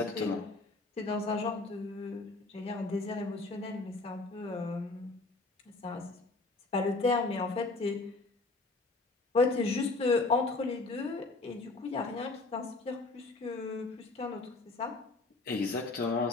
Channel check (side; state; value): right; quieter; 3.3 dB